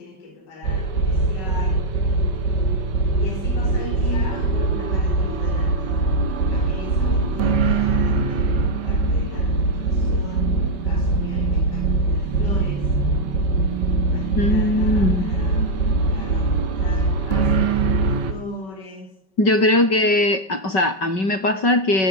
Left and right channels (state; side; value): late; right; 5.3 ms